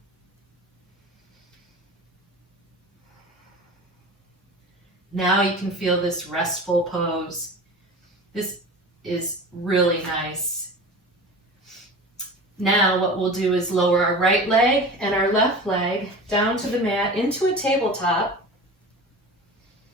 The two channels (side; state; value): both; normal; correlation 0.35